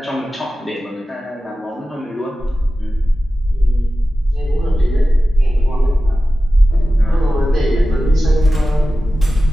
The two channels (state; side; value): normal; both; correlation 0.95